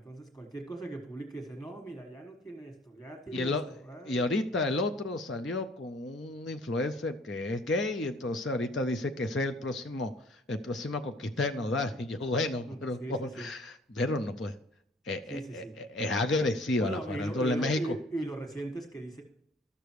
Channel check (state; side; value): normal; both; correlation 0.55